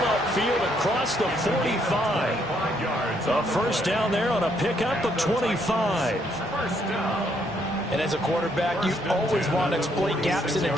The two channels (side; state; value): both; normal; correlation 0.71